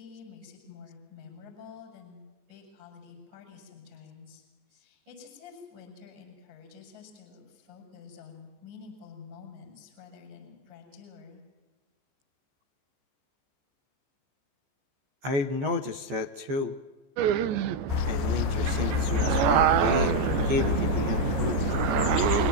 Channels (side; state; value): left; late; 14 ms